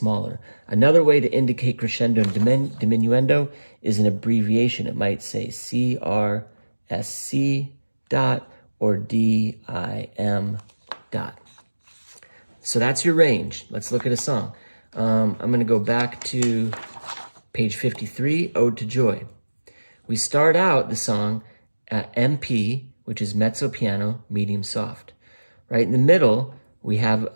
Another way to indicate crescendo and diminuendo is an abbreviation. It might say CRSC dot or DIM dot. So that's your range. Let's look at a song. I'm going to go back to page 53, Ode to Joy. We start out the song at MP, which is mezzo piano, medium soft. Right in the middle, we have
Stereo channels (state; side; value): inverted; both; correlation -1.00